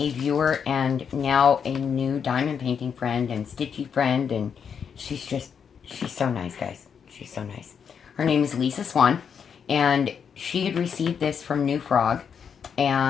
viewer and now a new diamond painting friend and stitchy friend, and she's so nice, guys. She's so nice. Her name is Lisa Swan, and she had received this from New Frog,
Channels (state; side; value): quieter; right; 7.0 dB